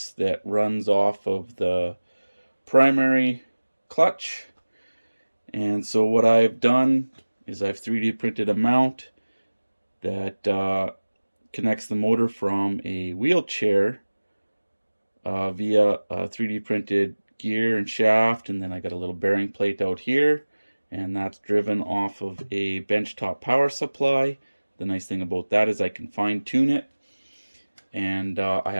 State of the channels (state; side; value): inverted; both; correlation -1.00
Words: that runs off of the primary clutch. And so what I've done is I've 3D printed a mount that connects the motor from a wheelchair via a 3D printed gear and shaft, and then I got a little bearing plate out here, and that's driven off of a benchtop power supply. The nice thing about that is I can fine tune it, and I